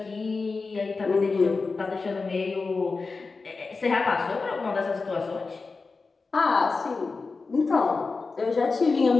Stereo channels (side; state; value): right; quieter; 4.2 dB